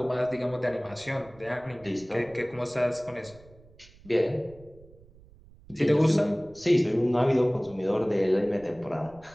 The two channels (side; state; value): right; noise; rumble, 24 dB below the sound